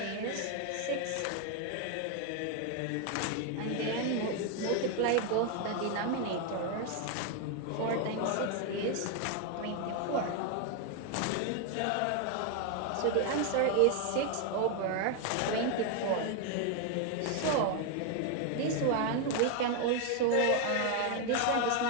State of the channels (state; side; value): different; both; correlation 0.01